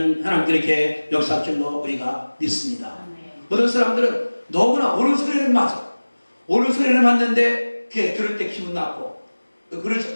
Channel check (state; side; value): inverted; both; correlation -1.00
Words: 하나님께 이렇게 역사할 줄로 우리가 믿습니다. 어떤 사람들은 너무나 옳은 소리를 맞아. 옳은 소리를 맞는데 그게 들을 때 기분 나쁘고